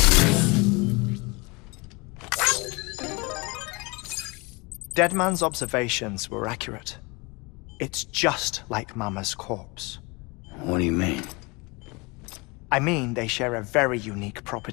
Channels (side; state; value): right; quieter; 26.8 dB